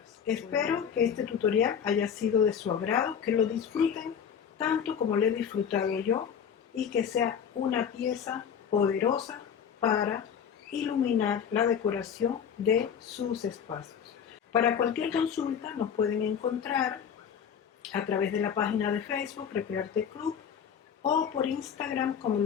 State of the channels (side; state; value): right; quieter; 7.7 dB